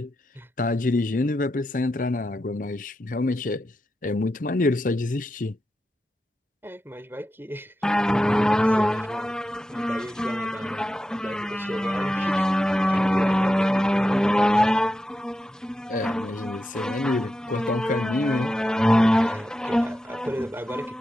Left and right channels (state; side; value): normal; both; correlation 0.89